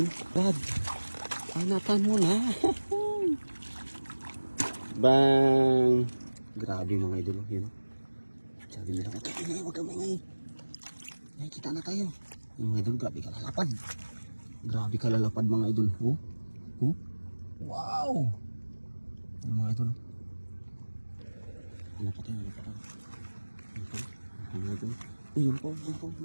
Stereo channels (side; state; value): both; inverted; correlation -1.00